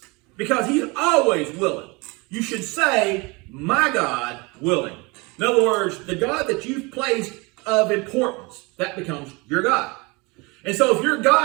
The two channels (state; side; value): quieter; left; 26.6 dB